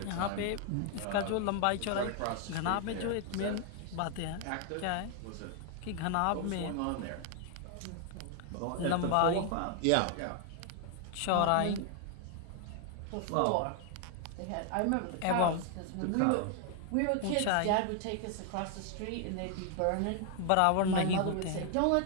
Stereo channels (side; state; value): both; different; correlation 0.00